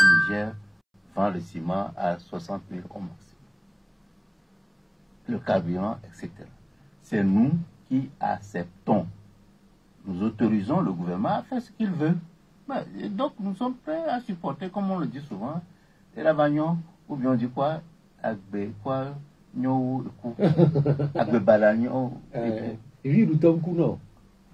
Niger vend le ciment à 60 000 au maximum. Le carburant, etc. C'est nous qui acceptons. Nous autorisons le gouvernement à faire ce qu'il veut. Et donc, nous sommes prêts à supporter, comme on le dit souvent, et la bagnon, ou bien on dit quoi, agbe, quoi, nyo, agbe balagnon.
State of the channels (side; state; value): both; identical; correlation 1.00